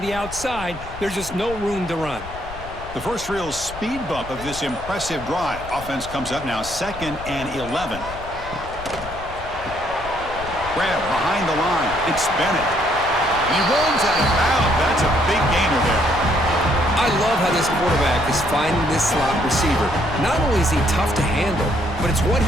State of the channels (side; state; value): left; noise; rumble, 13 dB below the sound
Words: the outside. There's just no room to run. The first real speed bump of this impressive drive. Offense comes up now 2nd and 11. Grab behind the line. It's Bennett. He runs out of bounds. That's a big gainer there. I love how this quarterback is finding this slot receiver. Not only is he tough to handle, but it's what